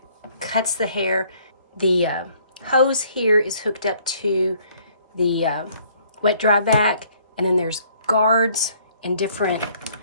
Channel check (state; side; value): inverted; both; correlation -0.62